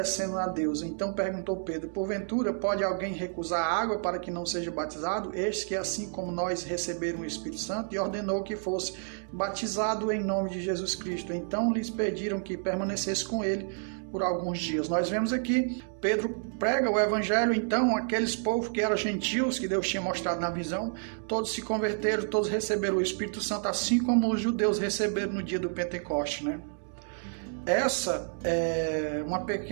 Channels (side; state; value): left; silent; 58 dB below the other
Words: a Deus. Então perguntou Pedro: porventura pode alguém recusar água para que não seja batizado? Este que assim como nós receberam o Espírito Santo, e ordenou que fosse batizado em nome de Jesus Cristo. Então lhes pediram que permanecesse com ele por alguns dias. Nós vemos aqui, Pedro prega o evangelho, então aqueles povos que eram gentios, que Deus tinha mostrado na visão, todos se converteram, todos receberam o Espírito Santo, assim como os judeus receberam no dia do Pentecoste, né? Essa é